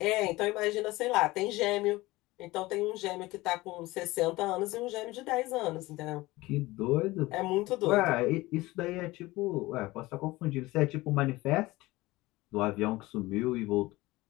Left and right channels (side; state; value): right; quieter; 19.8 dB